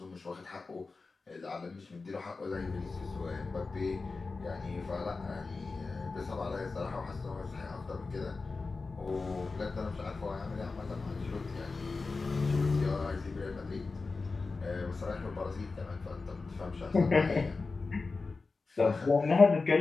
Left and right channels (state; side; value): quieter; right; 4.0 dB